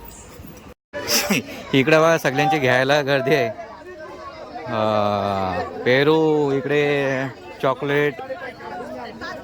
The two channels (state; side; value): identical; both; correlation 1.00